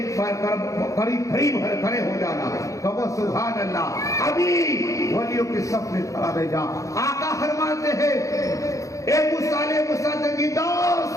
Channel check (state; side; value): late; right; 0.16 ms